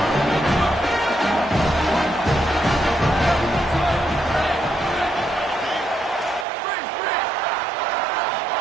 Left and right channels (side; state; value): left; drops out; at 6.5 s